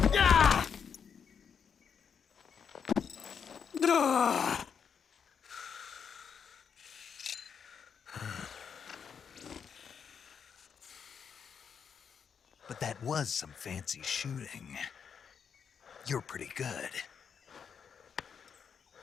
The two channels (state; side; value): quieter; right; 7.0 dB